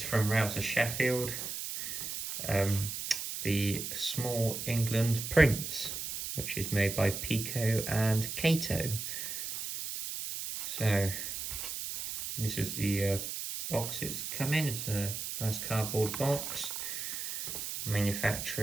from Rouse Sheffield the Small England Prince, which is made by Peco and Kato. So this is the box it's come in. It's a nice cardboard box.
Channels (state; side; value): noise; right; hiss, 5 dB below the sound